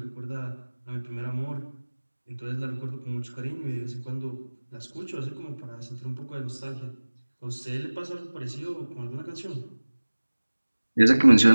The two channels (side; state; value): both; inverted; correlation -1.00